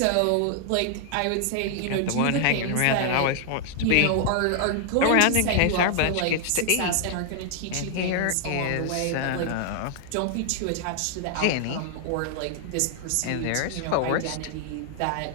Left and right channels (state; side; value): different; both; correlation 0.00